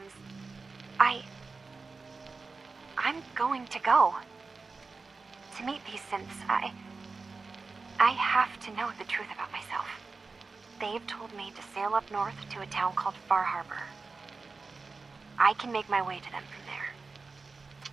I'm going to go to meet these synths. I have to know the truth about myself. They've told me to sail up north to a town called Far Harbor. I can make my way to them from there.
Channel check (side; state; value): left; quieter; 4.1 dB